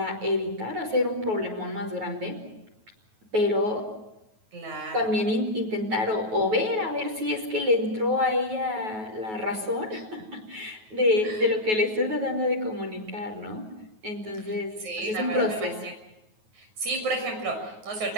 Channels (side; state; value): left; late; 9.3 ms